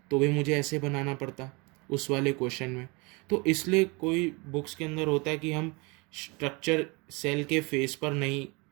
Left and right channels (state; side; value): quieter; left; 28.1 dB